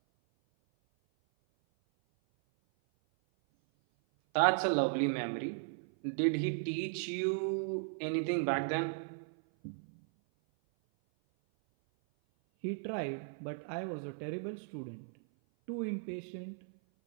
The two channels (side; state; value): left; silent; 54 dB below the other